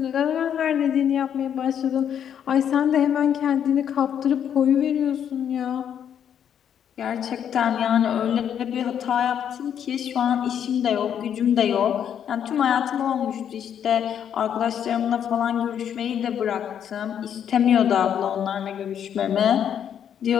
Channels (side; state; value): right; quieter; 8.9 dB